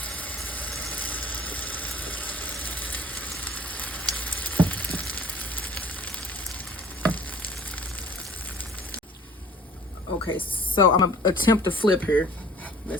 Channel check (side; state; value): both; normal; correlation 0.50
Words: Okay, so I'm gonna attempt to flip here.